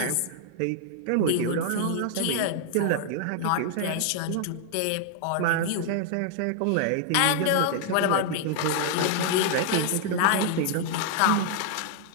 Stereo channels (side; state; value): both; different; correlation -0.01